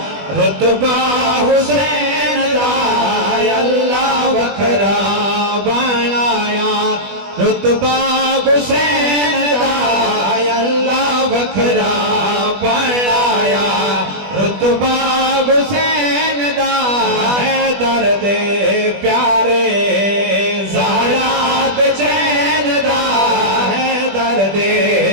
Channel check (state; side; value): late; left; 20 ms